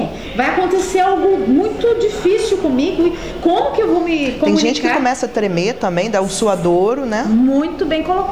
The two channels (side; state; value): both; identical; correlation 1.00